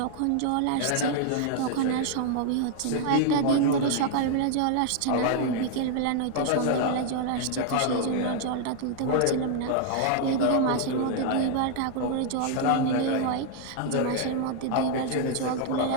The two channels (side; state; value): both; different; correlation 0.00